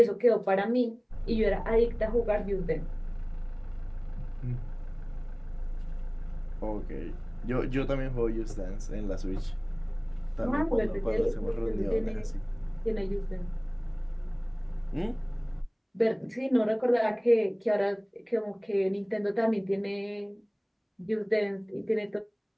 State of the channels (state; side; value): identical; both; correlation 1.00